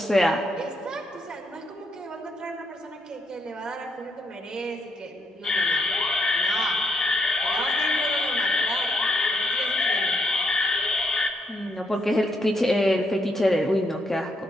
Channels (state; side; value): normal; both; correlation 0.76